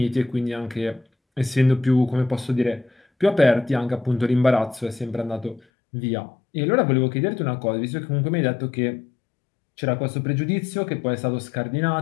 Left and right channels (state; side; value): drops out; right; at 5.6 s